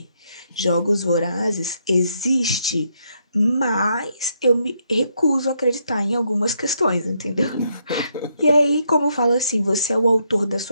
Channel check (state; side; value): inverted; both; correlation -0.76